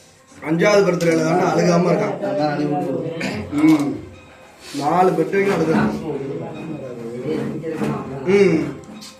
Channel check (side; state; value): both; identical; correlation 1.00